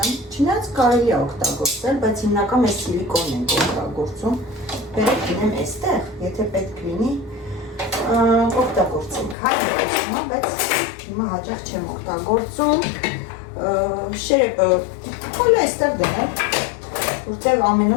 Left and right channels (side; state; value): right; drops out; at 9.3 s